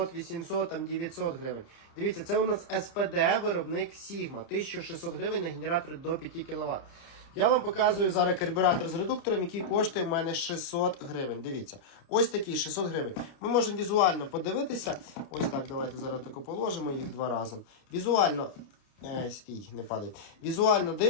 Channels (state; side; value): late; right; 30 ms